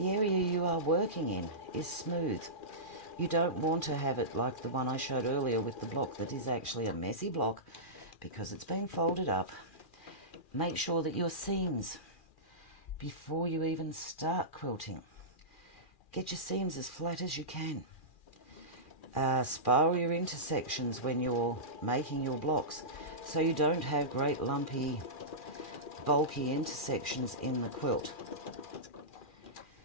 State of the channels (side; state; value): right; late; 2.4 ms